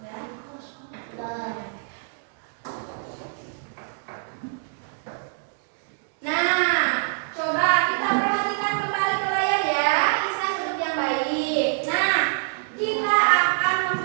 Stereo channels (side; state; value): left; silent; digital silence